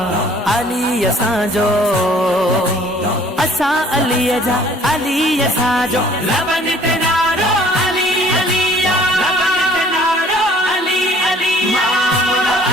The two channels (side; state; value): both; normal; correlation 0.55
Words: अली असांजो असां अलीअ जा अली असांजो लबन दिनारो अली अली लबन दिनारो अली अली। मौला